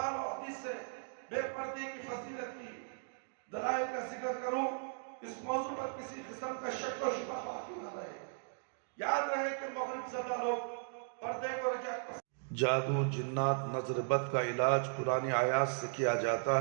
اور حدیث سے بے پردے کی فضیلت کی دلائل کا ذکر کروں. اس موضوع پر کسی قسم کا شک و شبہ باقی نہ رہے. یاد رہے کہ مغرب زدہ لوگ پردے کو رجعت. جادو، جنات، نظر بد کا علاج قرآن آیات سے کیا جاتا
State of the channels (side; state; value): left; silent; digital silence